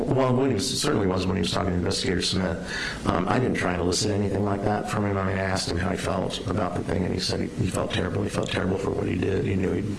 it certainly was when he was talking to Investigator Smith. I didn't try and elicit anything like that from him. I mean, I asked him how he felt about the thing, and he said he felt terrible. He felt terrible for what he did. He knew he'd,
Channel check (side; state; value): both; identical; correlation 1.00